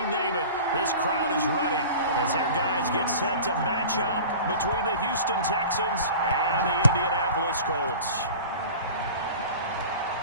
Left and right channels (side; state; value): both; inverted; correlation -0.39